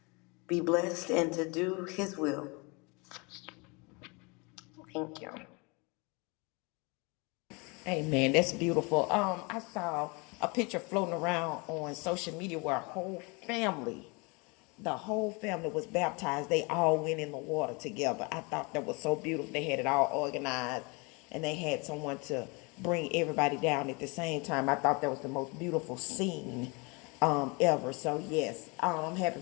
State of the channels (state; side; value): quieter; right; 29.3 dB